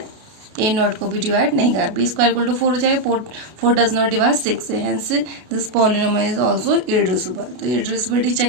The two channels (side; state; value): left; late; 32 ms